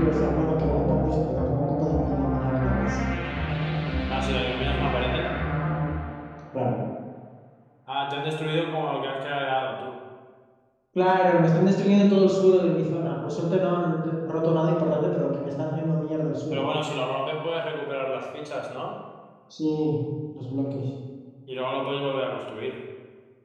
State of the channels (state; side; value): identical; both; correlation 1.00